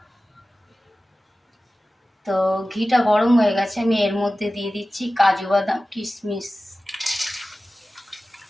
তো ঘিটা গরম হয়ে গেছে, আমি এর মধ্যে দিয়ে দিচ্ছি কাজু বাদাম কিশমিশ।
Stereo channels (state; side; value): normal; both; correlation 0.96